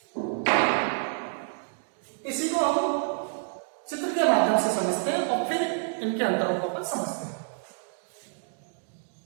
इसी को हम चित्र के माध्यम से समझते हैं और फिर इनके अंतरों को समझते हैं।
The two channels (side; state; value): left; silent; digital silence